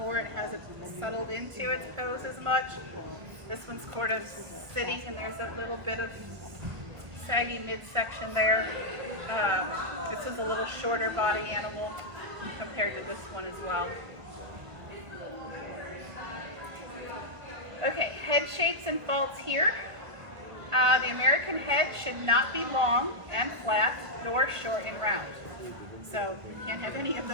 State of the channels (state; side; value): late; left; 1.5 ms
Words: It hasn't settled into its pose as much. This one's sort of sitting, and there's a little bit of saggy midsection there. This is a little shorter body animal compared to this one as well. Okay, head shapes and faults here. The American head should not be long and flat, nor short and round. So you can't have any of